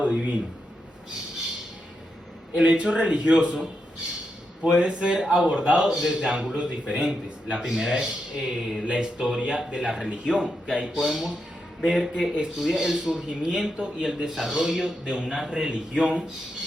divino. El hecho religioso puede ser abordado desde ángulos diferentes. La primera es la historia de la religión, que ahí podemos ver que estudia el surgimiento y el desarrollo de una religión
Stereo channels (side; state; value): both; normal; correlation 0.85